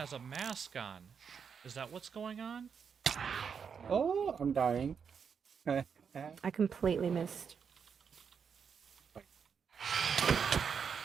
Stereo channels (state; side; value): quieter; left; 6.6 dB